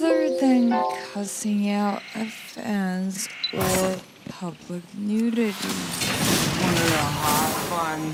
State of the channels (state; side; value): identical; both; correlation 1.00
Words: than cussing out at fans or public nudity. Wanted to hop on